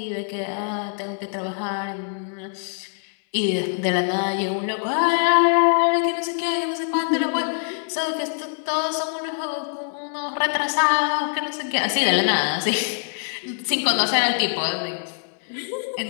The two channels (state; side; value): silent; right; 63 dB below the other